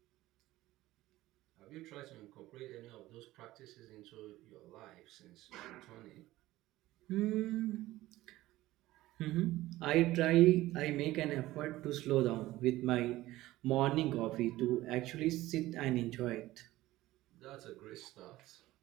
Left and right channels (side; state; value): left; quieter; 16.8 dB